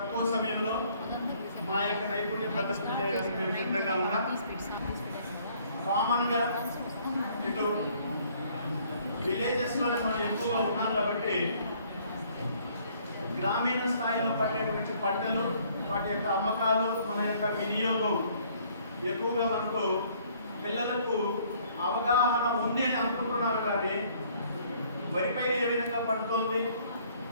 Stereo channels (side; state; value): both; inverted; correlation -0.61